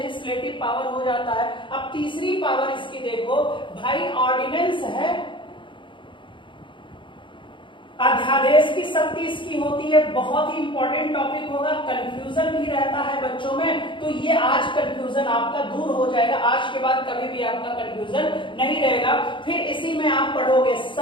पावर हो जाता है। अब तीसरी पावर इसकी देखो भाई, ऑर्डिनेंस है, अध्यादेश की शक्ति इसकी होती है। बहुत ही इंपॉर्टेंट टॉपिक होगा, कंफ्यूजन भी रहता है बच्चों में, तो ये आज कंफ्यूजन आपका दूर हो जाएगा। आज के बाद कभी भी आपका कंफ्यूजन नहीं रहेगा। फिर इसी में आप पढ़ोगे,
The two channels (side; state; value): right; late; 0.24 ms